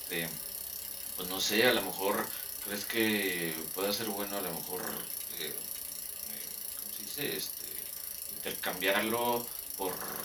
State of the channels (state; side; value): normal; both; correlation 0.97